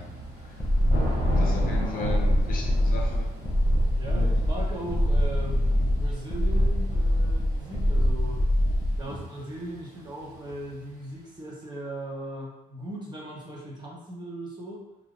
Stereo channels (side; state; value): both; normal; correlation 0.92